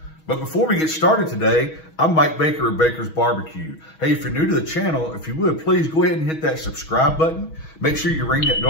But before we get started today, I'm Mike Baker of Baker's Barbecue. Hey, if you're new to the channel, if you would, please go ahead and hit that subscribe button. Make sure you ring that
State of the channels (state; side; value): late; right; 6.3 ms